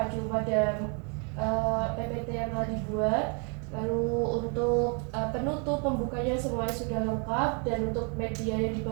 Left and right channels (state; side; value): quieter; left; 36.3 dB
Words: pada PPT yang telah dibuat. Lalu untuk penutup pembukanya semuanya sudah lengkap, dan untuk media yang